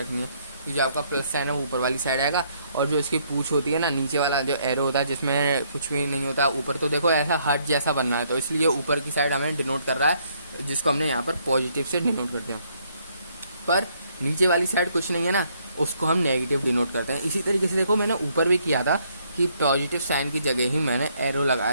है कि जो आपका प्लस साइन है वो ऊपर वाली साइड आएगा, और जो इसकी पूछ होती है ना, नीचे वाला जो एरो होता है जिसमें कुछ भी नहीं होता ऊपर, तो देखो ऐसा हार्ट जैसा बनना है, तो इसलिए ऊपर की साइड हमें डिनोट कर रहा है, जिसको हमने यहाँ पर पॉजिटिव से डिनोट कर दिया। पर नीचे वाली साइड कुछ नहीं है ना, उसको हम नेगेटिव डिनोट करते हैं। इसी तरीके से देखो मैंने ऊपर भी किया था कि पॉजिटिव साइन की जगह ही मैंने एरो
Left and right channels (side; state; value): both; inverted; correlation -0.69